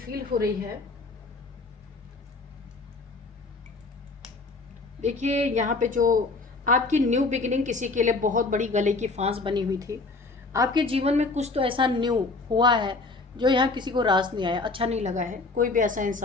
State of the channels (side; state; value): right; quieter; 3.7 dB